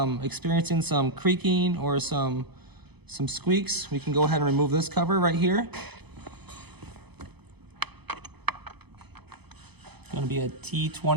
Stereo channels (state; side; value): late; left; 0.98 ms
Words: experiencing some creaking or some squeaks, we can go ahead and remove this cover right here. It's going to be a